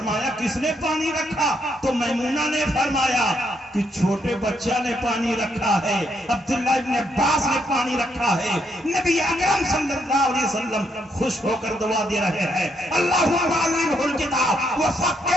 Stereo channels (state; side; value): normal; both; correlation 0.76